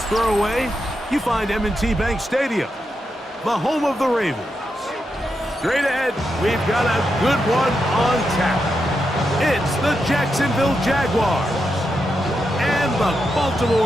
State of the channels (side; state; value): both; normal; correlation 0.85